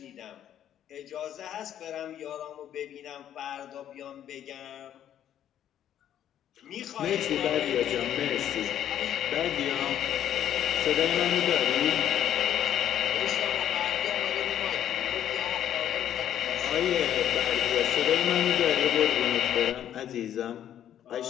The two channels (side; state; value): right; quieter; 10.6 dB